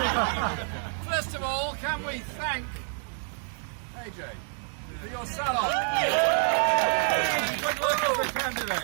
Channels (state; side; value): silent; left; 59 dB below the other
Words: First of all, can we thank AJ for your sell-off? Good luck as a